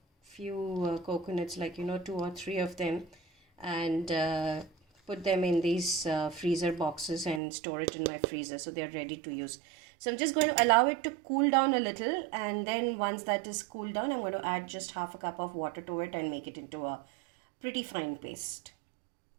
few coconuts, like 2 or 3 of them, and put them in these freezer boxes and store it in my freezer so they are ready to use. So I'm just going to allow it to cool down a little, and then once that is cooled down, I'm going to add just half a cup of water to it and make it into a pretty fine paste.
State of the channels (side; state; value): left; drops out; at 7.4 s